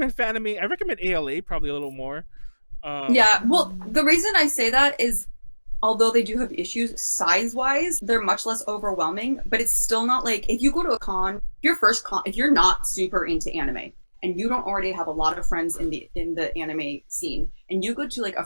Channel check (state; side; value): inverted; both; correlation -1.00